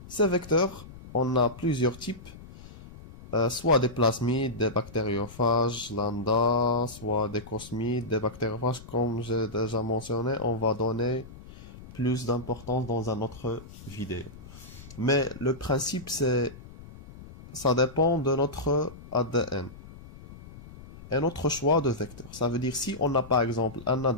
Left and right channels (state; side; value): noise; left; rumble, 17 dB below the sound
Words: ces vecteurs, on a plusieurs types. Soit des plasmides, des bactériophages lambda, soit des cosmides, des bactériophages, comme j'ai déjà mentionné, on va donner plus d'importance dans une autre vidéo. Mais le principe, ça dépend de notre ADN et notre choix de vecteur. Ça veut dire si on a par exemple un